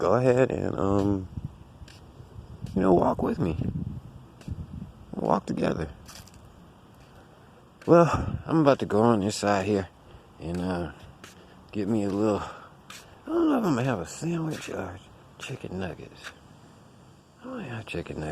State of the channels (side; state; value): both; identical; correlation 1.00